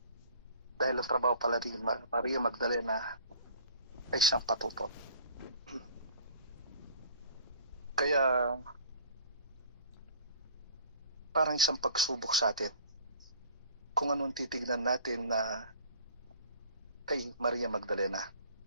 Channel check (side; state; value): both; inverted; correlation -0.48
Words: Dahil ang trabaho pala ni Maria Magdalena ay siyang patutot. Kaya parang isang pagsubok sa atin kung anong titignan natin na kay Maria Magdalena.